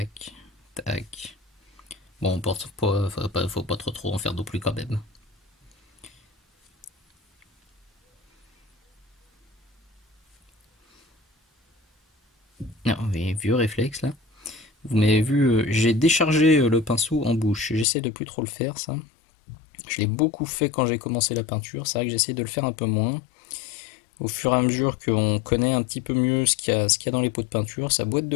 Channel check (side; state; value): right; drops out; at 17.9 s